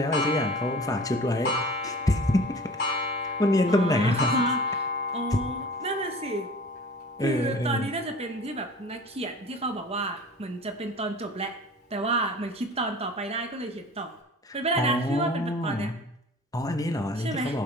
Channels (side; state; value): both; normal; correlation 0.42